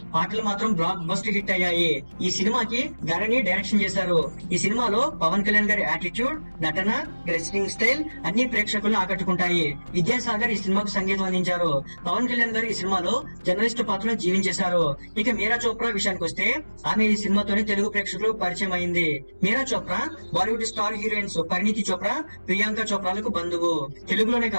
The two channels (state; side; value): inverted; both; correlation -1.00